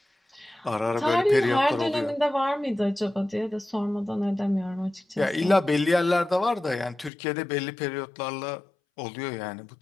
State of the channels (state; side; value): drops out; right; at 7.1 s